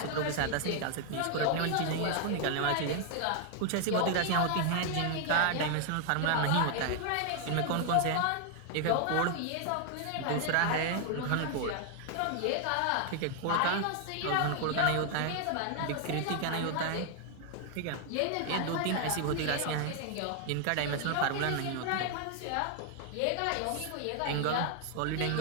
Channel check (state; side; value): different; both; correlation 0.00